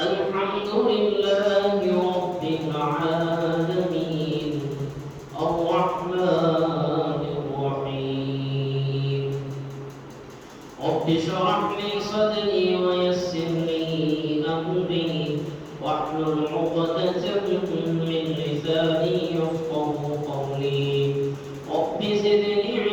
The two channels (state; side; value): identical; both; correlation 1.00